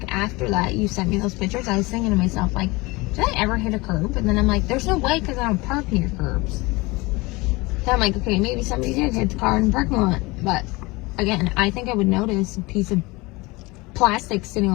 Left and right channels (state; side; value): quieter; right; 23.5 dB